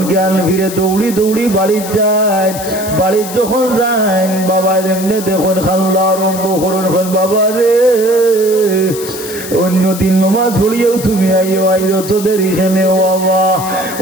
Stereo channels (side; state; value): left; noise; hiss, 11 dB below the sound